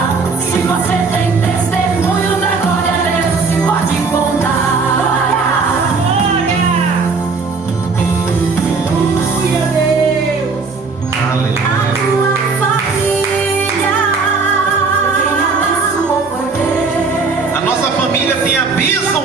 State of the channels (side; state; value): left; quieter; 4.5 dB